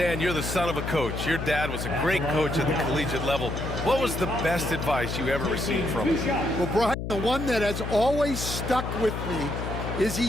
you're the son of a coach. Your dad was a great coach at the collegiate level. What was the best advice you ever received from him? Well, Brian, the one that has always stuck with me is he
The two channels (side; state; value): left; noise; hum, 5 dB below the sound